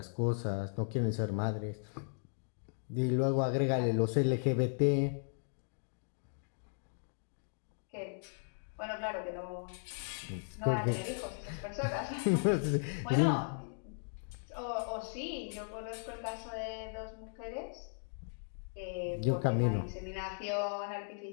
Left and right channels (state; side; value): silent; right; digital silence